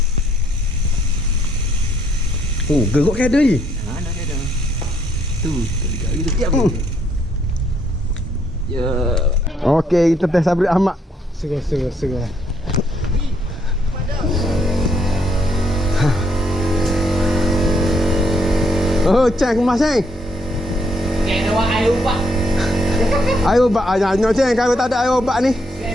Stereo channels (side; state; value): both; normal; correlation 0.71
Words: Oh, gerok kada ni. Mana kada? Tu gitu. Ya. Okey, kita test Sabri Ahmad. Segar. Oh, ceng kemas ceng. Kena buat air ubat. Air ubat aja ceng, kalau tak ada air ubat ni.